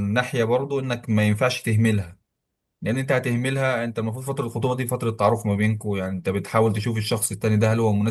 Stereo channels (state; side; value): identical; both; correlation 1.00